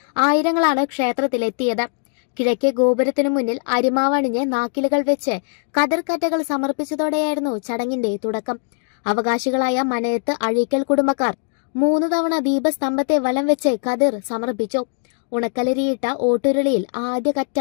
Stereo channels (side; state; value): right; silent; 61 dB below the other